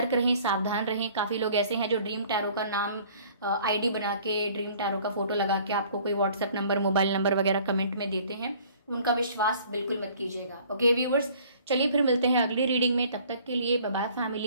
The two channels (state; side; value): inverted; both; correlation -0.54